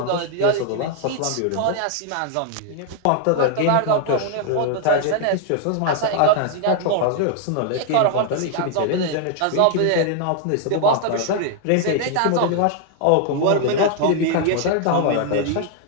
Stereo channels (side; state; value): both; different; correlation 0.00